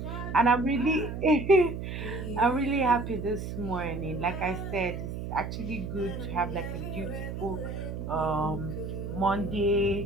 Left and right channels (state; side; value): noise; right; hum, 6 dB below the sound